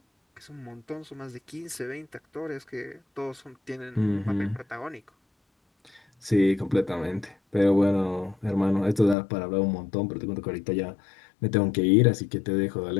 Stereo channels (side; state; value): right; drops out; at 9.2 s